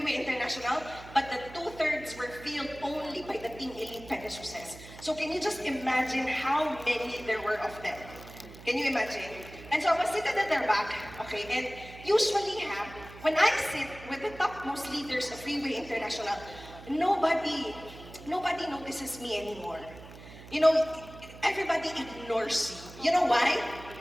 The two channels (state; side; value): noise; right; hum, 17 dB below the sound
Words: International, but the 2/3 were filled only by the Team Elite Pegasus. So can you just imagine how many there were of them? Can you imagine? And so I was seated at their back, okay, and usually when I sit with the topmost leaders of RIWAY International, nobody notices me anymore. You know, everybody ignores you. You know why?